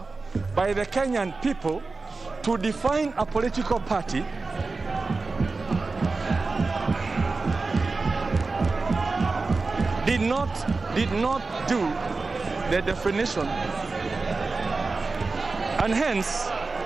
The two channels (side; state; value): left; quieter; 3.9 dB